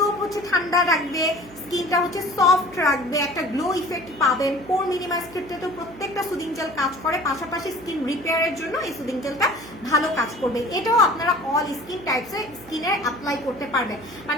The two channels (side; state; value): right; noise; hum, 20 dB below the sound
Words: হচ্ছে ঠান্ডা রাখবে, স্কিনটা হচ্ছে সফট রাখবে, একটা গ্লো ইফেক্ট পাবেন। পোর মিনিমাইজ ক্ষেত্রে তো প্রত্যেকটা সুদিং জেল কাজ করে, পাশাপাশি স্কিন রিপেয়ারের জন্য এই সুদিং জেলটা ভালো কাজ করবে। এটাও আপনারা অল স্কিন টাইপসে স্কিনে অ্যাপ্লাই করতে পারবেন।